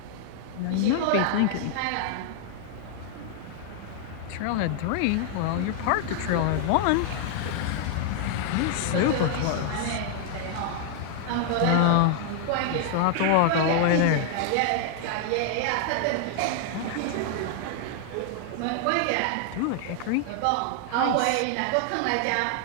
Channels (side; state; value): both; different; correlation 0.00